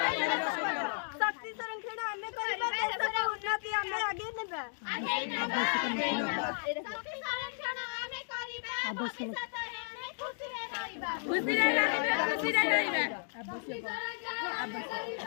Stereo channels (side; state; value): right; silent; digital silence